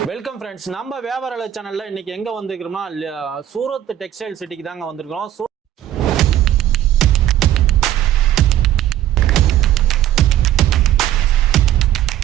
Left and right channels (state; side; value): quieter; left; 12.2 dB